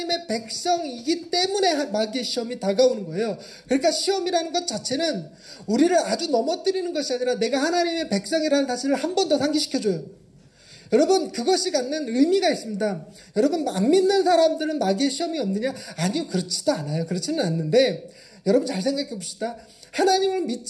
백성이기 때문에 마귀의 시험이 다가오는 거예요. 그러니까 시험이라는 것 자체는 우리를 아주 넘어뜨리는 것이 아니라 내가 하나님의 백성이라는 사실을 한 번 더 상기시켜줘요. 여러분, 그것이 갖는 의미가 있습니다. 여러분, 안 믿는 사람들은 마귀의 시험이 없느냐? 아니요, 그렇지도 않아요. 그렇지는 않는데 여러분 잘 생각해 봅시다. 하나님을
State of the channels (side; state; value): both; identical; correlation 1.00